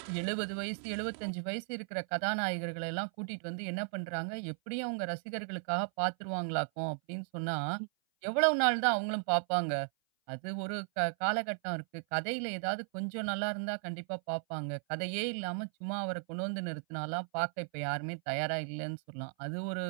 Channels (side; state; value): left; silent; 54 dB below the other